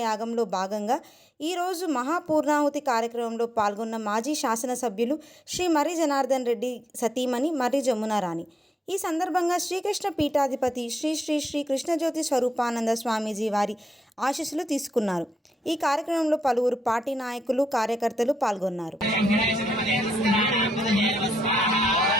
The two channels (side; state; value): both; normal; correlation 0.83